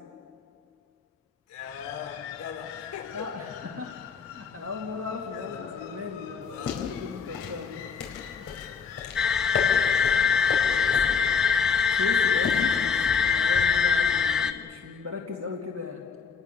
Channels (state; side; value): quieter; right; 6.1 dB